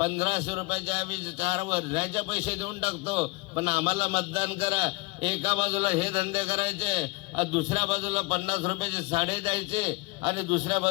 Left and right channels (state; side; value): quieter; right; 25.1 dB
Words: रुपयाचे आम्ही 4 वर्षाचे पैसे देऊन टाकतो पण आम्हाला मतदान करा. एका बाजूला हे धंदे करायचे, दुसऱ्या बाजूला 50 रुपयाची साडी द्यायचे आणि दुसऱ्या